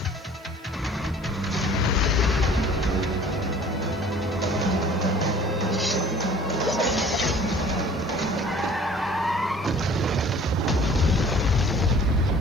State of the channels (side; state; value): right; noise; hiss, 29 dB below the sound